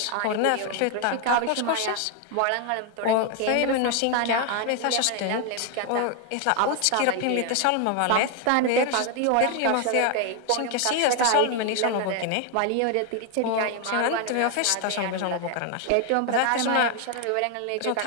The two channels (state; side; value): different; both; correlation 0.01